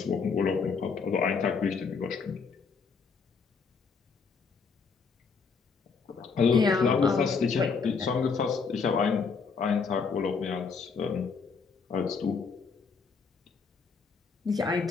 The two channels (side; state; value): right; quieter; 5.3 dB